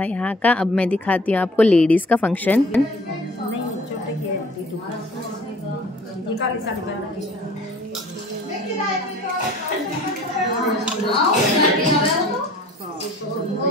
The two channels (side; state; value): both; normal; correlation 0.50